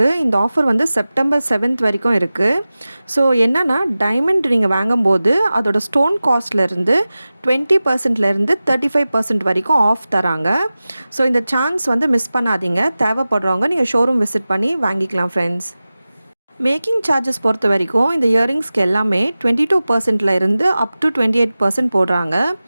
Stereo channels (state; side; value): inverted; both; correlation -0.96